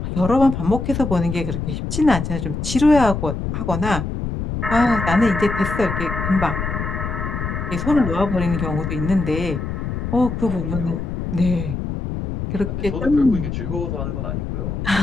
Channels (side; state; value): left; noise; rumble, 4 dB below the sound